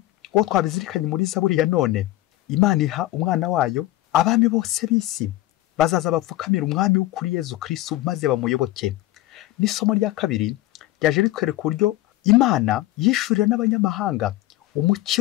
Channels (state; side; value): quieter; right; 16.6 dB